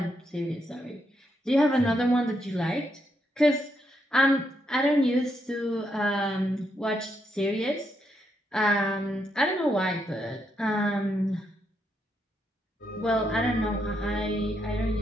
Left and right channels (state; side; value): normal; both; correlation 0.79